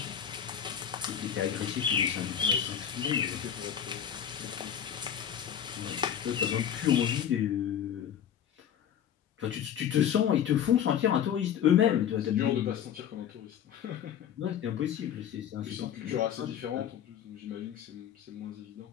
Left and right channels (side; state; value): right; quieter; 9.3 dB